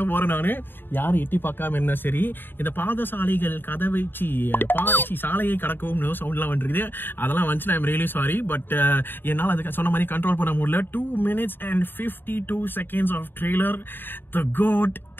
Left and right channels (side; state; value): right; late; 0.096 ms